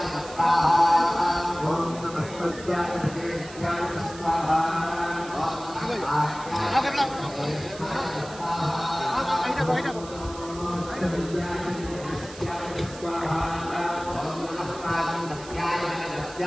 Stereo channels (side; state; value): right; noise; hiss, 17 dB below the sound